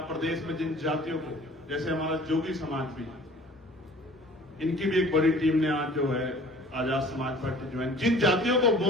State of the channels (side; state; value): both; normal; correlation 0.49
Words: प्रदेश में, जिन जातियों को, जैसे हमारा जोगी समाज भी, इनकी भी एक बड़ी टीम ने आज जो है आजाद समाज पार्टी ज्वाइन। जिन जातियों को